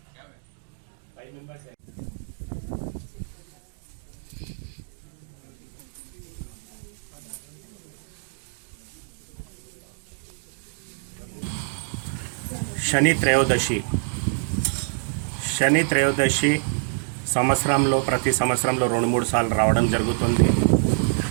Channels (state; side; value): silent; left; digital silence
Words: శని త్రయోదశి సంవత్సరంలో ప్రతి సంవత్సరంలో 2-3 సార్లు రావడం జరుగుతుంది.